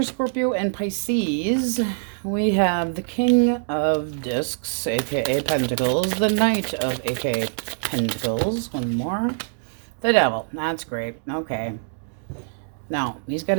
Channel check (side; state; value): left; silent; digital silence